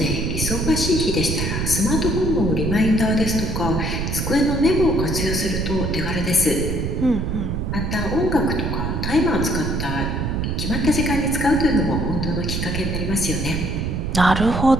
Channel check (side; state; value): right; noise; rumble, 1 dB below the sound